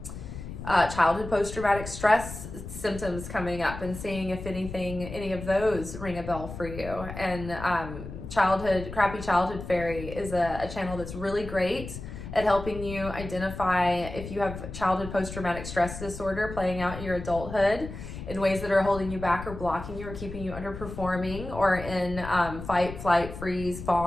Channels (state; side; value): noise; left; rumble, 10 dB below the sound